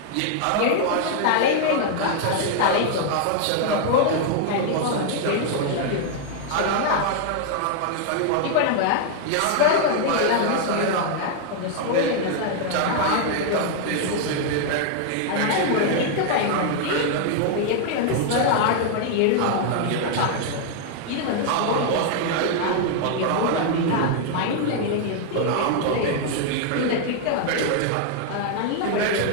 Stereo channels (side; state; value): both; different; correlation 0.00